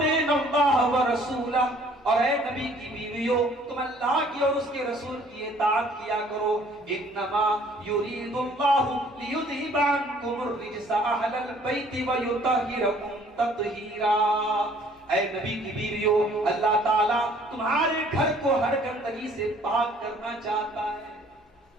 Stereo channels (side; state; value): both; normal; correlation 0.58